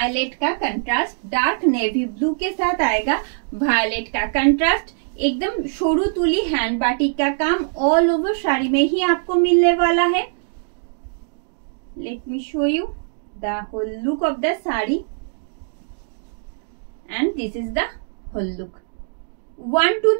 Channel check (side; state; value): left; silent; digital silence